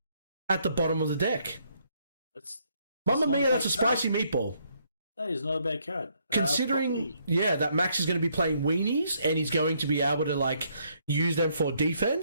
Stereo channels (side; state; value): both; inverted; correlation -0.71